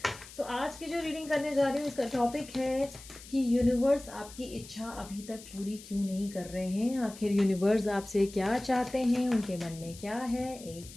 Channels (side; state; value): left; noise; hiss, 17 dB below the sound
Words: सो आज की जो रीडिंग करने जा रही हूँ इसका टॉपिक है कि यूनिवर्स आपकी इच्छा अभी तक पूरी क्यों नहीं कर रहे हैं। आखिर यूनिवर्स आपसे क्या चाहते हैं, उनके मन में क्या है।